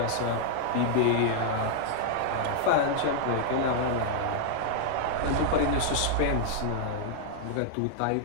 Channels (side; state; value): both; different; correlation -0.01